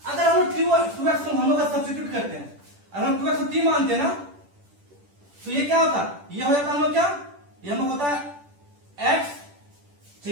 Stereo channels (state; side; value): late; left; 10 ms